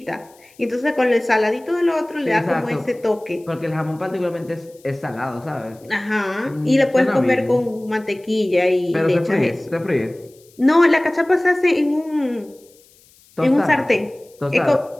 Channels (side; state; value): left; noise; hiss, 29 dB below the sound